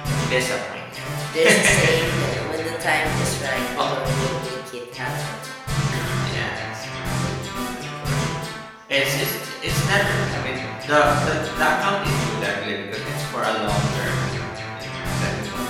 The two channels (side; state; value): both; identical; correlation 1.00